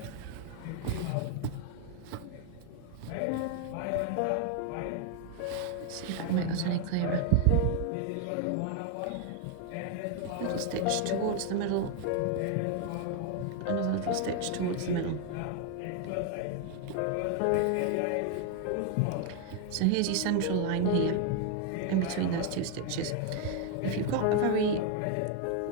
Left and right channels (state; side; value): different; both; correlation 0.01